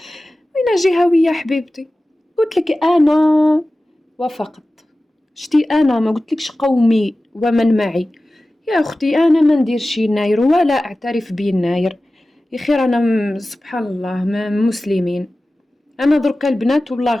جهويه حبيبتي؟ قلت لك انا وافقت. شتي انا ما قلتلكش قومي ومن معي يا اختي، انا ما نديرش يناير ولا اعترف بيناير. يا خير انا سبحان الله ما مسلمين. انا دركا البنات والله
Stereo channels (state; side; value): normal; both; correlation 0.96